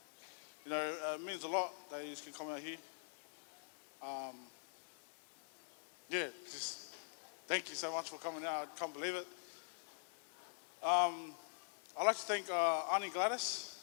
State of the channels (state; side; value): silent; right; digital silence